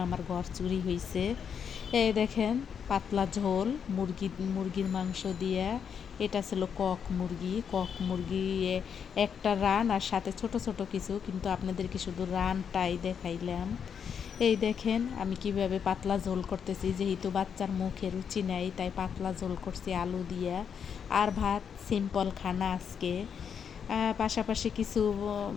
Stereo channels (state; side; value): quieter; right; 7.3 dB